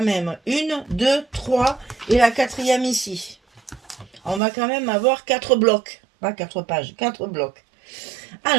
même. 1, 2, 3 et la 4e ici. On va quand même avoir 4 blocs. Pas 4 pages, 4 blocs.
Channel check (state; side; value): drops out; left; at 4.4 s